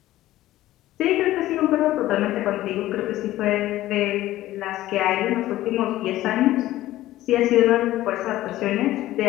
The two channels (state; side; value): quieter; right; 15.2 dB